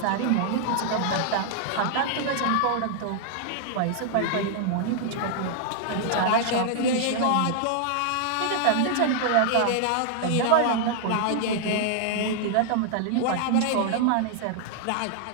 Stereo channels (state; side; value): different; both; correlation -0.01